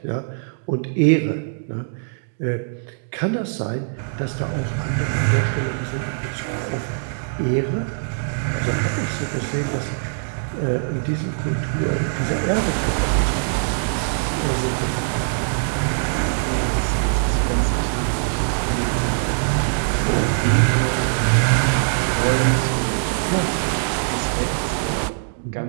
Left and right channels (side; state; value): left; silent; digital silence